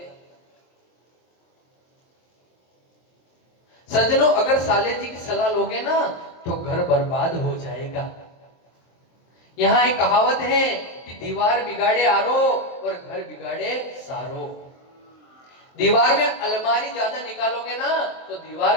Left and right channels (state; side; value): late; right; 23 ms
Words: हैं। सज्जनों, अगर साले जी की सलाह लोगे ना तो घर बर्बाद हो जाएगा। यहाँ एक कहावत है कि दीवार बिगाड़े आरो और घर बिगाड़े सारो। दीवार में अलमारी ज्यादा निकालोगे ना तो